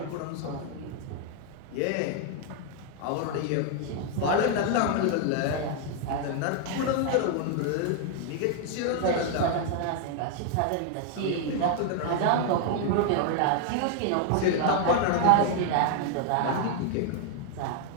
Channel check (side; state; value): both; different; correlation 0.00